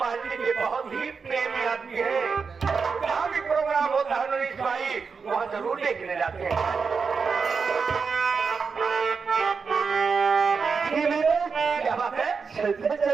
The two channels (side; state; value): left; quieter; 5.3 dB